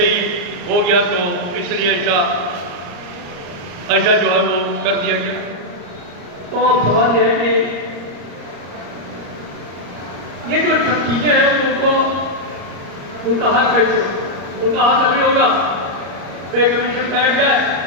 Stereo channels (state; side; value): late; left; 34 ms